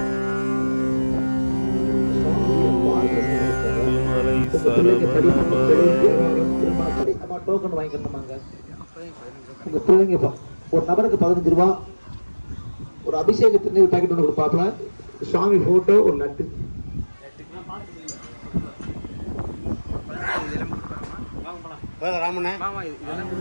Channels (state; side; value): inverted; both; correlation -1.00